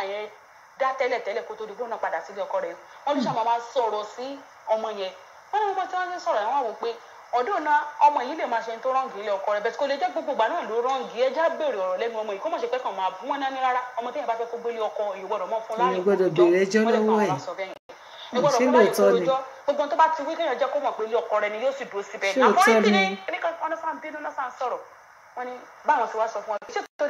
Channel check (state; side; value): identical; both; correlation 1.00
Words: yẹn dá tẹ́lẹ̀ kó tó di gbóná padà sílé ọkọ rẹ̀ wọ́n ló ṣàmọ́ máa sọ̀rọ̀ sí ọmọ yẹn wọ́n ní wọ́n tí wọ́n ti sọ̀rọ̀ yẹn wọ́n wò pé ọdún náà ọmọ yìí lè máa ṣe tó rọ́ǹgì ilé ọkọ rẹ̀ bẹ́ẹ̀ kó lè jẹ́ gbogbo ìgbà náà ló rọ́ǹgì ẹja béèrè ọ̀rọ̀ lẹ́nu ọmọ yìí kó mọ̀ ṣe pé kàn máa bú wọn náà ní rárá ọmọ téèyàn bá fẹ́ kó gbélé ọkọ ìgbọ́dọ̀ mọ́ fún láàrin gbogbo tó bá ti wí kéèyàn jẹ́ kó mọ̀ pé ilé ọkọ rẹ̀ ni yóò sì dúró síbẹ̀ àmọ́ ní kíni kíníkan ọ̀nà sáà ń bínú náà sáà ń sọ̀rọ̀ wọ́n ní báwọn ti wá sọ fún wọn ṣé